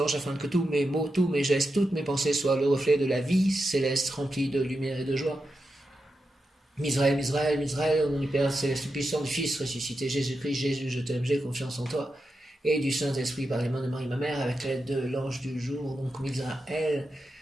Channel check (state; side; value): normal; both; correlation 0.88